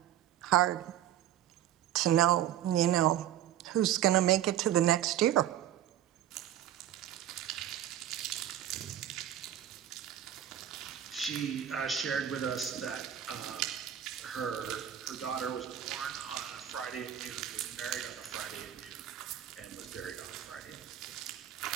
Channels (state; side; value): quieter; left; 11.2 dB